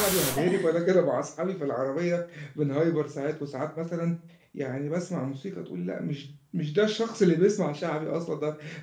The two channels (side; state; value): both; identical; correlation 1.00